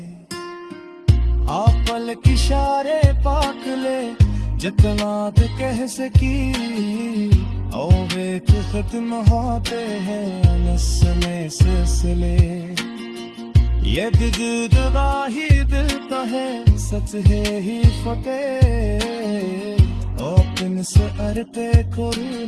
آپ پلک اشارے پاک لے جتنا تے کہہ سکی او ویک ختم ہوتے ہیں نسلیں سلسلے یہ دل دراہی دل کا ہے سچ ہے ہی فتح اوپن سے ارتے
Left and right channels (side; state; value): both; identical; correlation 1.00